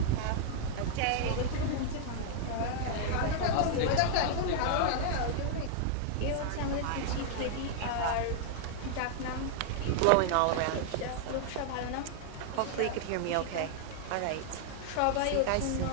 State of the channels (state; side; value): different; both; correlation -0.01